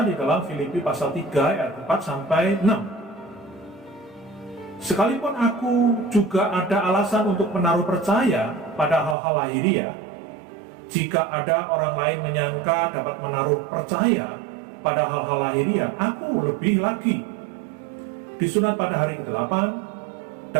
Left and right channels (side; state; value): left; drops out; at 9.2 s